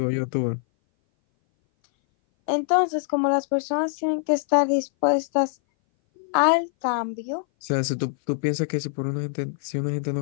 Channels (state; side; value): silent; right; 59 dB below the other